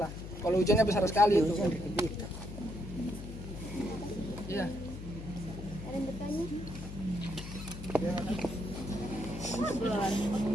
lah kalau hujannya besar sekali itu.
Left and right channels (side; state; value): left; noise; hum, 10 dB below the sound